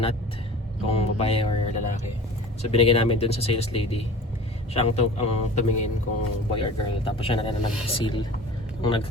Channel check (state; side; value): normal; both; correlation 0.41